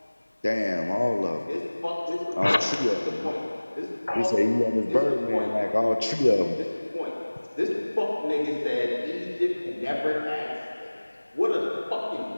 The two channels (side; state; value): both; inverted; correlation -1.00